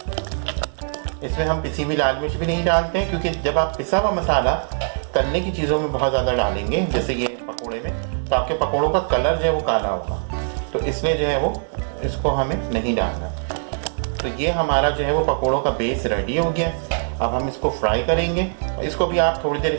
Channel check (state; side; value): silent; left; 64 dB below the other